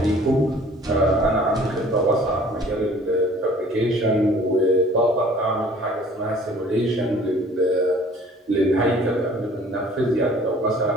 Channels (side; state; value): both; normal; correlation 0.52